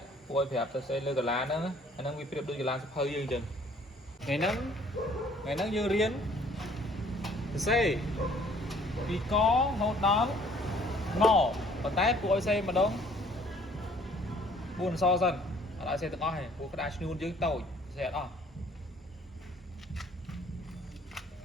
ពូឲ្យប្រាប់ទៅសេលើកាឡាហ្នឹងអាហ្នឹងវាប្រៀបដូចកាឡាសភៅយើងអញ្ចឹងថ្ងៃហ្នឹងយើងរៀនទៅសេពីករហូតដល់ងប៉ុន្តែពូឲ្យសេម្ដង4អក្សរសិនអត់ឲ្យសេទាំងអស់ទេពូក្តារឈ្នួនយើងតូចសេអត់អស់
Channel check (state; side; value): normal; both; correlation 0.58